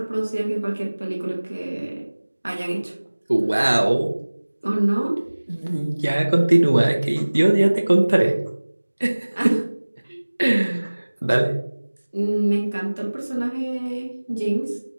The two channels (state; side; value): inverted; both; correlation -1.00